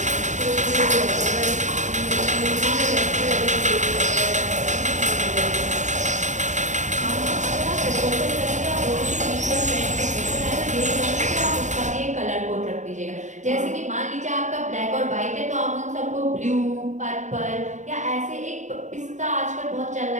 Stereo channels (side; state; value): left; late; 0.35 ms